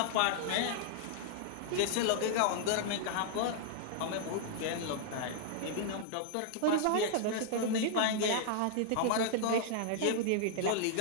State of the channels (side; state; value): both; different; correlation -0.01